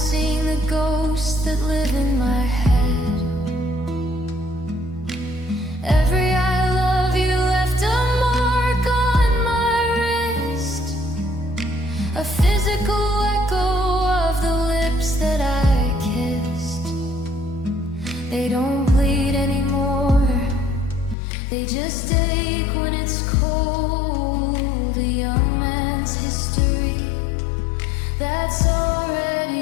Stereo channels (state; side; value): drops out; right; at 21.2 s